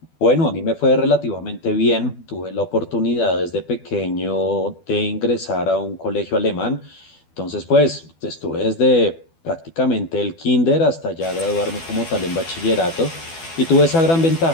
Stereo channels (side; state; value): right; late; 12 ms